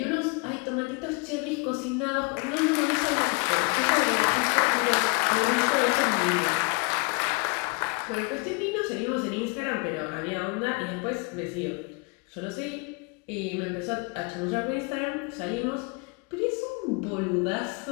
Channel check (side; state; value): right; quieter; 31.6 dB